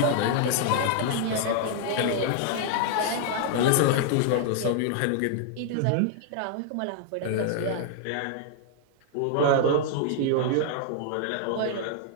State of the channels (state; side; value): different; both; correlation -0.01